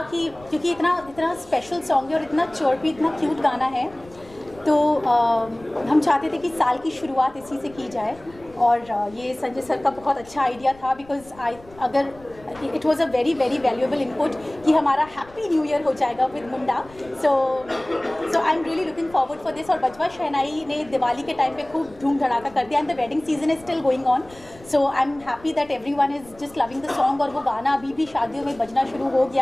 कि क्योंकि इतना स्पेशल सॉन्ग है और इतना चर्पी, इतना क्यूट गाना है, तो हम चाहते थे कि साल की शुरुआत इसी से की जाए। और ये संजय सर का बहुत अच्छा आइडिया था, because it was a very very valuable input कि हमारा हैप्पी न्यू ईयर हो जाएगा with Munda. So I am really looking forward for this. और बजवा शहनाई ने दिवाली के टाइम पे खूब धूम धड़ाका कर दिया, and the wedding season is still going on. So I am happy that everyone is just loving the song. और वो गाना अभी भी शादियों में बजना शुरू हो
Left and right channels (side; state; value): left; noise; rumble, 23 dB below the sound